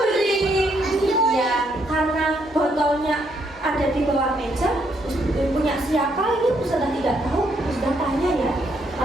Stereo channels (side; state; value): both; normal; correlation 0.73